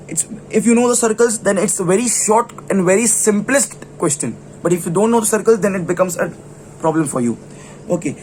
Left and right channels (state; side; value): identical; both; correlation 1.00